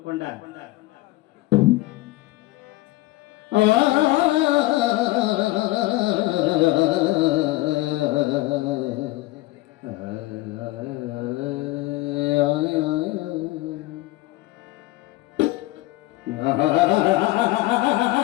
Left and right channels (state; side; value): quieter; right; 18.9 dB